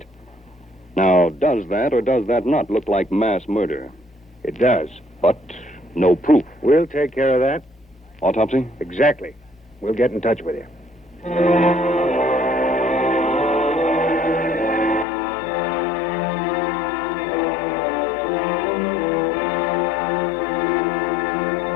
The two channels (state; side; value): drops out; right; at 15.1 s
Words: Now, does that or does that not look like mass murder? It does. But no proof. We'll take care of that. Autopsy? Exactly. We'll get in touch with you.